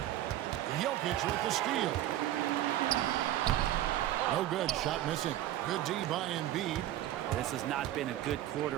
Jokic with the steal. No good. Shot missing. Good D by Embiid. This has not been a good quarter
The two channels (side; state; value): left; quieter; 13.4 dB